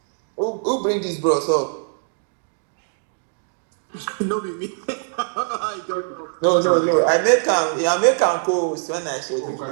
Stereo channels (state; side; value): silent; left; digital silence